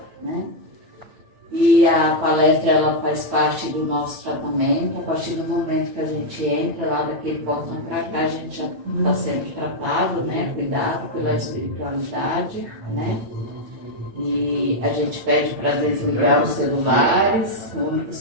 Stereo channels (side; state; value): left; late; 9.1 ms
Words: né? E a palestra, ela faz parte do nosso tratamento. A partir do momento que a gente entra lá daquele portão para cá, a gente já está sendo tratado, né? Cuidado pela espiritualidade, né? E a gente pede para desligar os celulares. O único